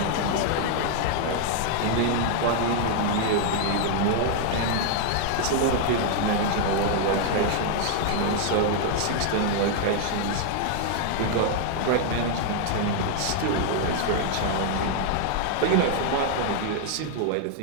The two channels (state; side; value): different; both; correlation 0.00